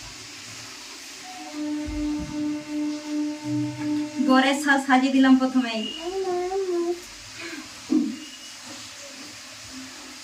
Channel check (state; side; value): identical; both; correlation 1.00